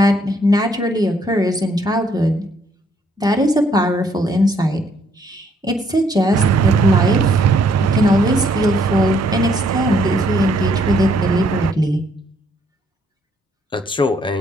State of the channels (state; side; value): normal; both; correlation 0.68